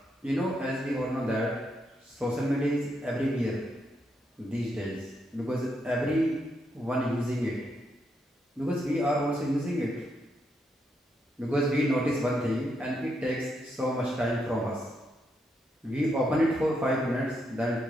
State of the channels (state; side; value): normal; both; correlation 0.80